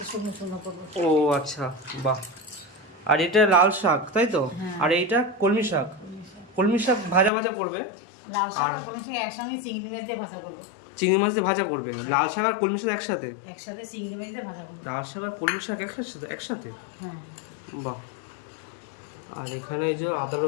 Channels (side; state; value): right; drops out; at 7.3 s